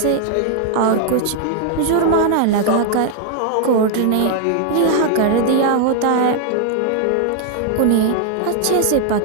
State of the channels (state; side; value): different; both; correlation 0.00